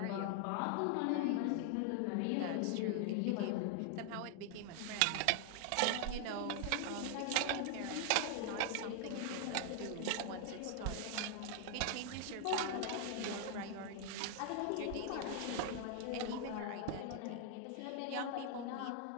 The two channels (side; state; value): both; different; correlation 0.00